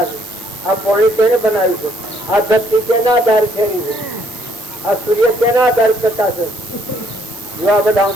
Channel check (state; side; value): noise; right; hiss, 18 dB below the sound